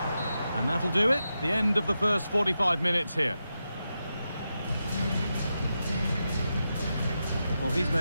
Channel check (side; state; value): both; inverted; correlation -0.88